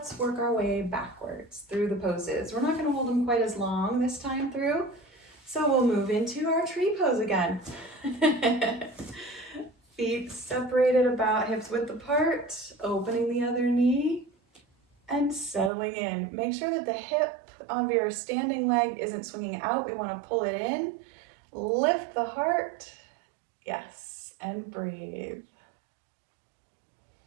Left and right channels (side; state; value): left; drops out; at 15.7 s